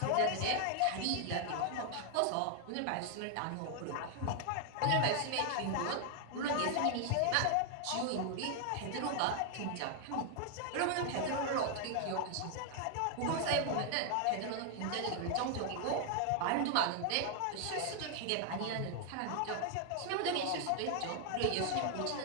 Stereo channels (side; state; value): both; different; correlation 0.00